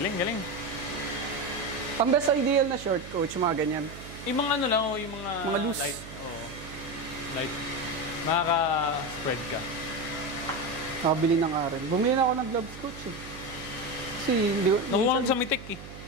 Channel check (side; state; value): right; noise; hum, 14 dB below the sound